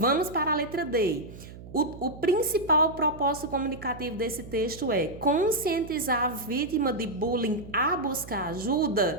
para a letra D. O principal propósito comunicativo desse texto é conscientizar a vítima de bullying a buscar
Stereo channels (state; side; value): noise; right; hum, 15 dB below the sound